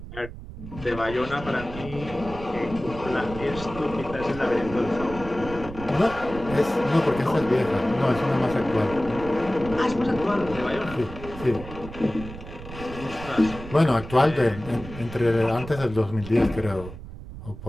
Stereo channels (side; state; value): right; noise; rumble, 13 dB below the sound